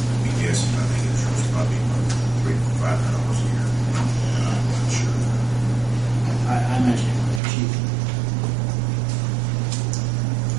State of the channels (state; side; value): drops out; left; at 7.4 s